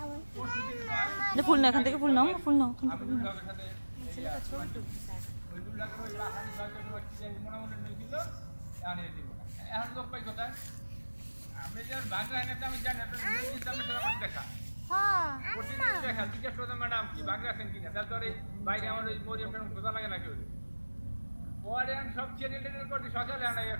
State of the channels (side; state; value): both; inverted; correlation -1.00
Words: পরশুদিন কয় ফুল না, এখান থেকে ফুল নাও, ফুল নাও। আমি নুরুল হকের সাথে ওই নুরুল হকের ওই বাসানি সরকার মোটামুটি নিয়ে দিল, আনিয়ে দিব না। এখন লোক পাই কোথায়? আমি যখন বাংলা এনেতে আমি জানি আমার দেখা প্রতিদিন দেখা জিজ্ঞেস করতাম ম্যাডাম কি বাংলা আছেন কিনা, তারপরে বাইরে আমার ওই মরিয়াম ম্যাডাম খোঁজা লাগে না কেউ। পরে আমি সব চ্যানেল টেনেল করছি সকালে আনা ইয়ে